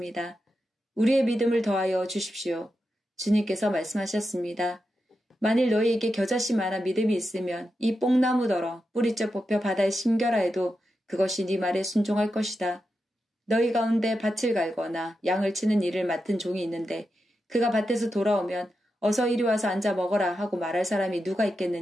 우리의 믿음을 더하여 주십시오. 주님께서 말씀하셨습니다. 만일 너희에게 겨자씨만한 믿음이 있으면 이 뽕나무더러 뿌리째 뽑혀 바다에 심겨라 해도 그것이 네 말에 순종할 것이다. 너희 가운데 밭을 갈거나 양을 치는 일을 맡은 종이 있는데 그가 밭에서 돌아오면 어서 이리 와서 앉아 먹어라 하고 말할 사람이 누가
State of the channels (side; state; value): both; normal; correlation 0.88